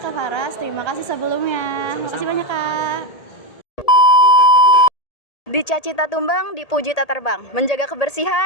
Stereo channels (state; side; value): late; right; 1.8 ms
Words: Kak Faras. Terima kasih sebelumnya. Terima kasih banyak, Kak. Dicaci tak tumbang, dipuji tak terbang. Menjaga